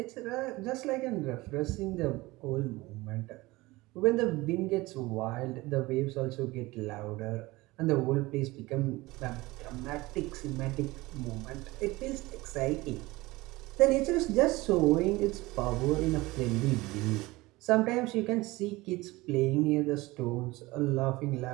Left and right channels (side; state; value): left; quieter; 20.8 dB